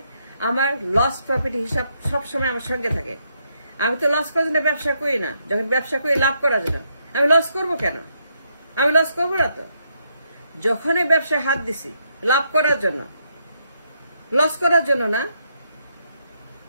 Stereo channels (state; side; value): inverted; both; correlation -0.77